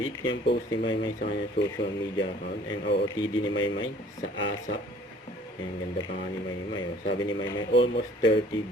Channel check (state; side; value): normal; both; correlation 0.53